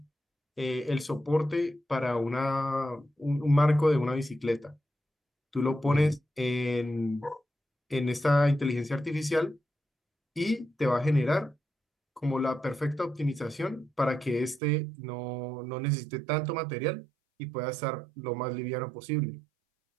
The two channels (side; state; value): left; drops out; at 14.6 s